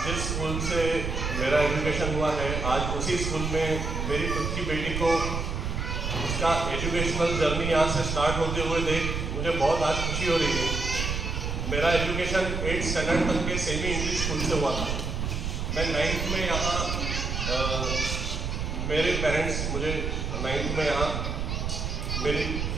जिस स्कूल से मेरा एजुकेशन हुआ है, आज उसी स्कूल में मेरी खुद की बेटी को उसका एजुकेशनल जर्नी यहाँ से स्टार्ट होते हुए देख मुझे बहुत आज खुशी हो रही है। मेरा एजुकेशन 8th स्टैंडर्ड तक के सेमी इंग्लिश स्कूल से हुआ था। मैं 9th में यहाँ मेरे पेरेंट्स मुझे 9th में यहाँ मेरी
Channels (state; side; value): noise; right; rumble, 2 dB below the sound